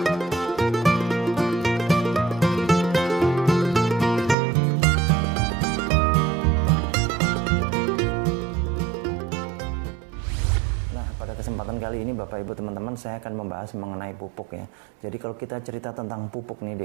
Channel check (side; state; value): left; drops out; at 4.4 s